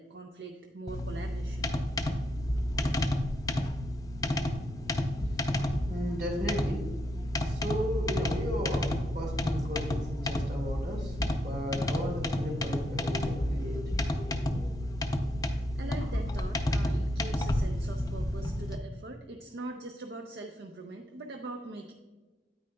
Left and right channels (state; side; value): normal; both; correlation 0.80